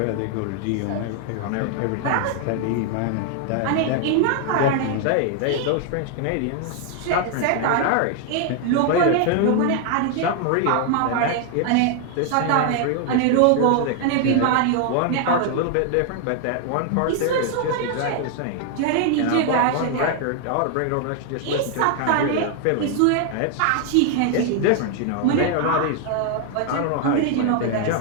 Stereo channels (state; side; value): different; both; correlation 0.00